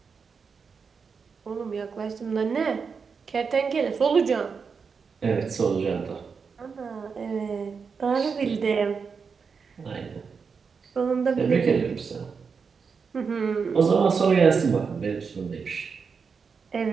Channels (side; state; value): left; quieter; 5.6 dB